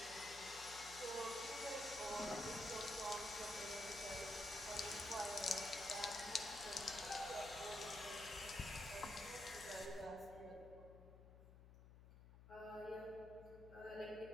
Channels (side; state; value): left; noise; hum, 16 dB below the sound